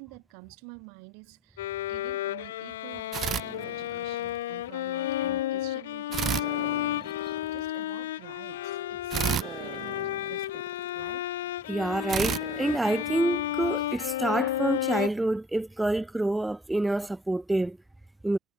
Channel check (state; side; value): normal; both; correlation 0.43